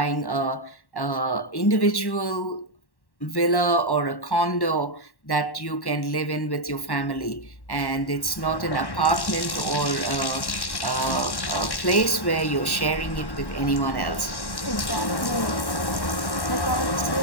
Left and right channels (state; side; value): late; right; 1.1 ms